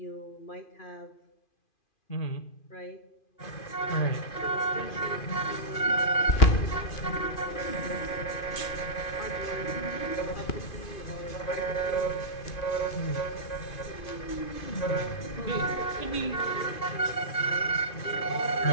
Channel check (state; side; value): late; right; 2.5 ms